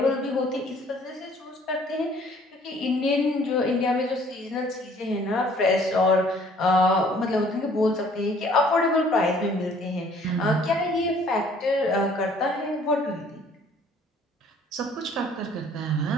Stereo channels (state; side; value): normal; both; correlation 0.57